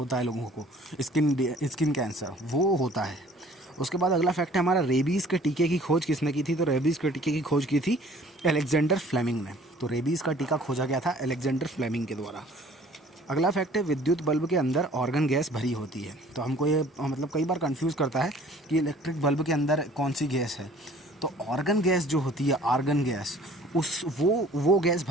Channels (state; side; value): normal; both; correlation 0.53